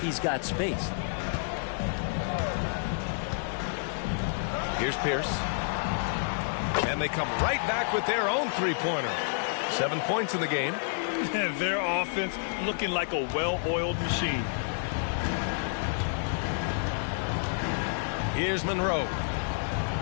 he's got space. Here's Pierce. And they come right back with their own three-pointer. 7 points in the game. And their offense looking like a well-oiled machine. Here's Monroe.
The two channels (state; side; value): silent; right; 58 dB below the other